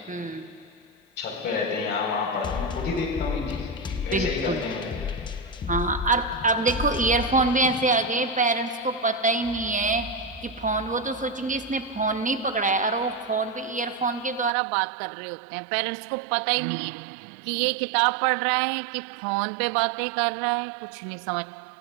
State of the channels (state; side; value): drops out; left; at 14.5 s